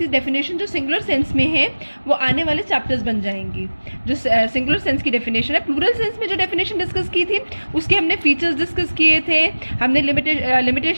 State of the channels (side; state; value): both; inverted; correlation -1.00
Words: डेफिनेशन जो सिंगुलर सेंस में है वो आने वाले चैप्टर्स बन जाएंगी. जो सिंगुलर सेंस की डेफिनेशन है, प्लूरल सेंस में जो डेफिनेशन डिस्कस की थी उसके हमने फीचर्स डिस्कस किए थे, हमने